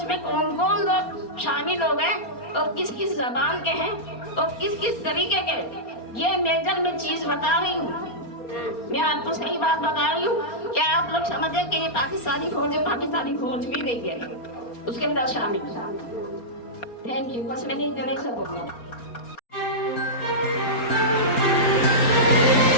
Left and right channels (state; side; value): late; right; 4.3 ms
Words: में कौन कौन लोग शामिल हो गए, और किस किस जबान के हैं, और किस किस तरीके के। ये मेजर में चीज़ बता रही हूँ, मैं आपको सही बात बता रही हूँ। क्या आप लोग समझे कि ये पाकिस्तानी फौज भी नहीं है उसके अंदर शामिल। थैंक यू, बस मैंने इतने से बोलना।